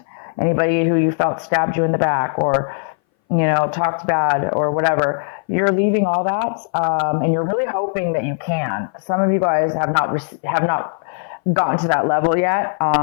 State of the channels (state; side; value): silent; right; 61 dB below the other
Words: Anybody who you felt stabbed you in the back, or, talked bad or whatever. You're leaving all that, and you're really hoping that you can. Some of you guys have not gotten to that level yet.